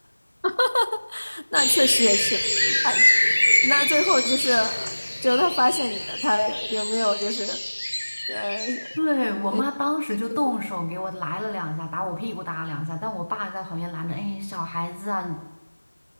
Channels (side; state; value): both; inverted; correlation -1.00